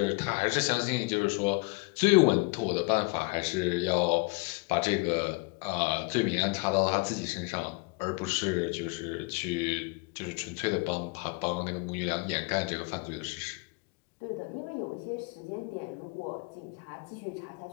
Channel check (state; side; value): quieter; right; 28.6 dB